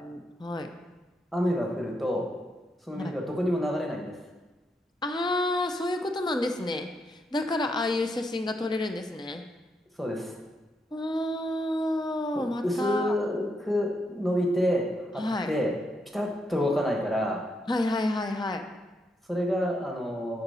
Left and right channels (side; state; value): both; normal; correlation 0.80